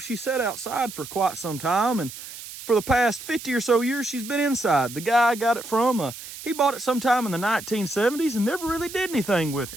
she sat outside for quite some time, and for the past 50 or so years, she's been inside. The guy I got it from, he bought it sometime in the 1970s and never really did anything with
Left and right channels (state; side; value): noise; right; hiss, 13 dB below the sound